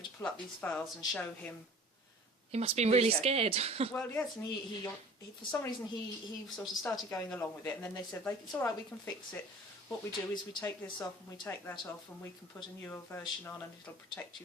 to pull up these files and show him. He must have been really scared. Well, yes, and he for some reason he sort of started going along with it, and then they said, it's all right, we can fix it. What we do is we take this off and we take that off, and we can put a newer version on, and it'll protect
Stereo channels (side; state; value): both; normal; correlation 0.45